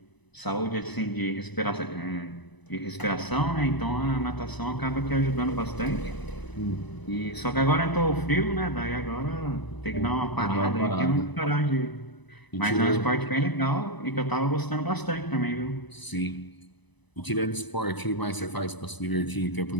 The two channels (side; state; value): right; late; 1.0 ms